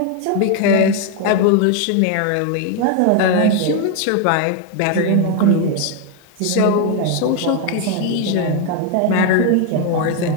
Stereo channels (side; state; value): both; different; correlation 0.01